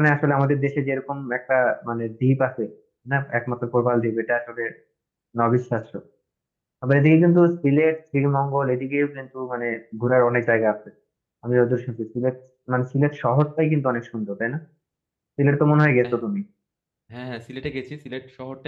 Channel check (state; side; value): identical; both; correlation 1.00